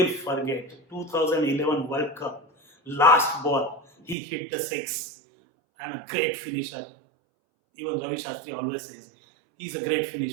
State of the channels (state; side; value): drops out; left; at 4.2 s